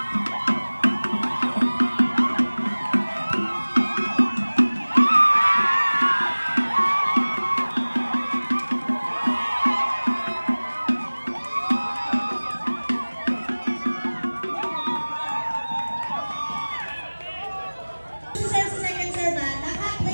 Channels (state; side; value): inverted; both; correlation -1.00